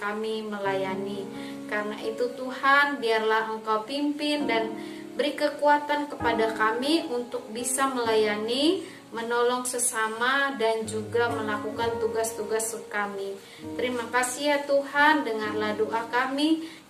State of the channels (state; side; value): identical; both; correlation 1.00